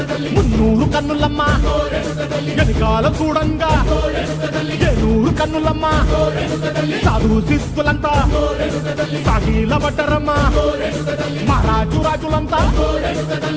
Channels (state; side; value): identical; both; correlation 1.00